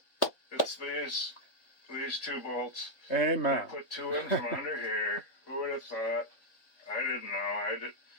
It's these 2 bolts. Amen. I put 2 in from under here. Who would have thought? I didn't know.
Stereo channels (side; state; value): right; late; 3.8 ms